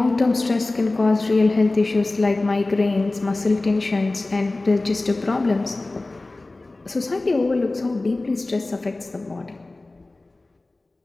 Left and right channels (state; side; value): quieter; right; 3.0 dB